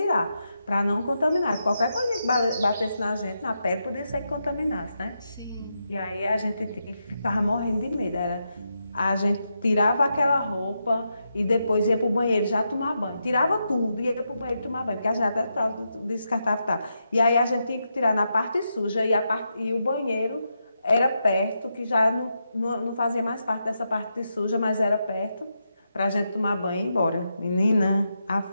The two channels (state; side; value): inverted; both; correlation -0.85